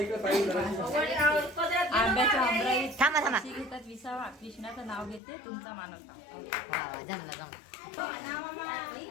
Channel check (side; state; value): right; drops out; at 5.2 s